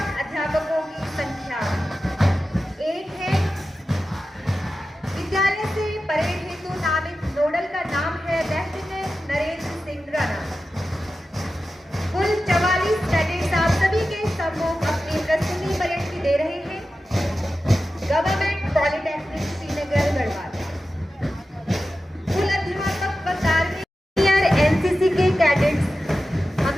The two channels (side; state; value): both; normal; correlation 0.93